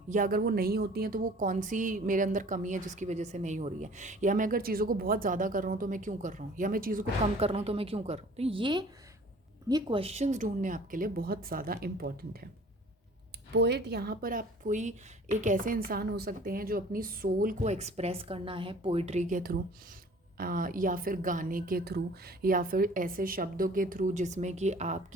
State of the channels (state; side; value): normal; both; correlation 0.49